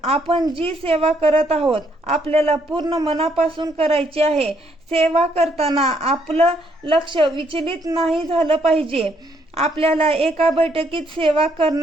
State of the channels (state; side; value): normal; both; correlation 0.71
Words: आपण जी सेवा करत आहोत आपल्याला पूर्ण मनापासून करायची आहे। सेवा करताना आपलं लक्ष विचलित नाही झालं पाहिजे। आपल्याला एका बैठकीत सेवा